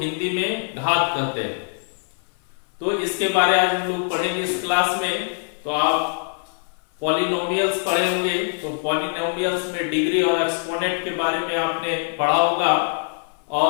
हिंदी में घात कहते हैं, तो इसके बारे आज हम लोग पढ़ेंगे इस क्लास में। तो आप पॉलिनोमियल्स पढ़े होंगे, तो पॉलिनोमियल्स में डिग्री और एक्सपोनेंट के बारे में आपने पढ़ा होगा।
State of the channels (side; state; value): right; silent; 56 dB below the other